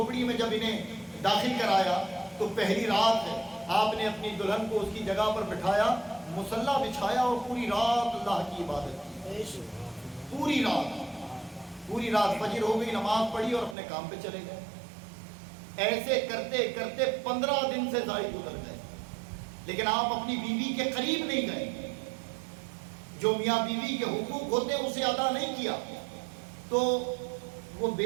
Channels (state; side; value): drops out; left; at 13.8 s